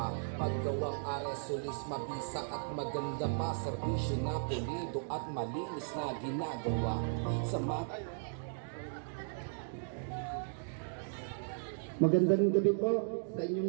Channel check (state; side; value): silent; left; digital silence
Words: Maggawang Arisolis, mabisa at maganda pa. Serbisyo na pulido at malinis na ginagawa. Magandang gabi po sa